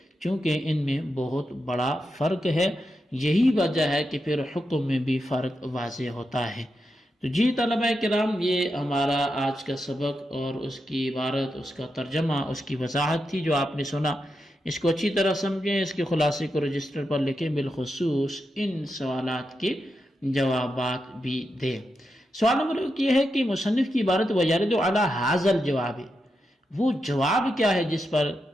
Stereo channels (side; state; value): both; normal; correlation 0.87